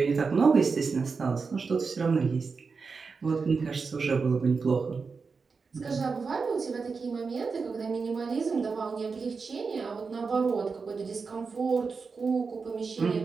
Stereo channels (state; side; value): quieter; left; 4.9 dB